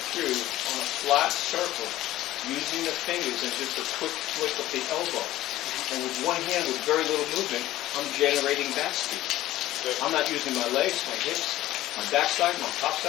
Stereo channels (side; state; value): right; quieter; 15.2 dB